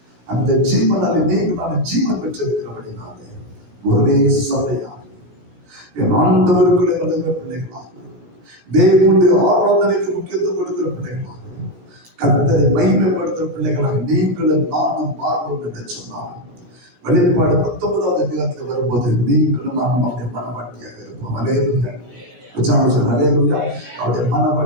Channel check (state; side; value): late; left; 17 ms